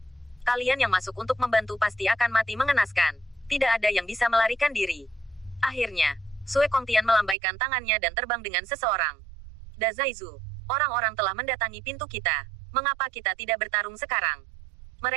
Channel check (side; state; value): left; drops out; at 7.4 s